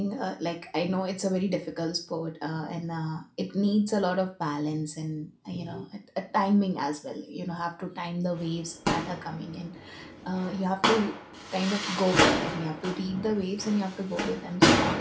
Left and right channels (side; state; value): both; identical; correlation 1.00